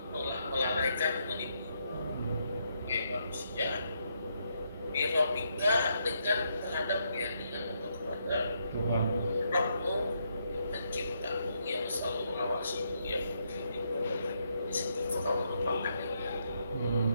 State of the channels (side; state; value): both; inverted; correlation -0.77